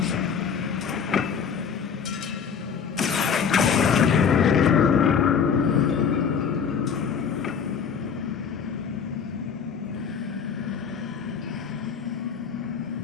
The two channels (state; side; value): quieter; right; 6.7 dB